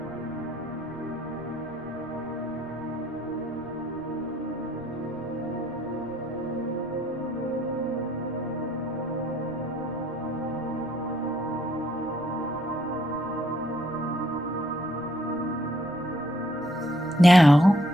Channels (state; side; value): noise; right; rumble, 22 dB below the sound